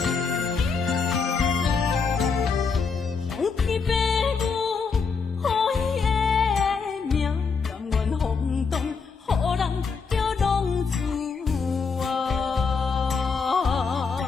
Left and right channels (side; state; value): right; quieter; 5.1 dB